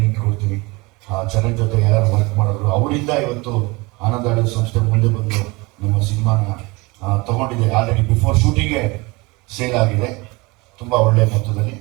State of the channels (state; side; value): quieter; left; 24.9 dB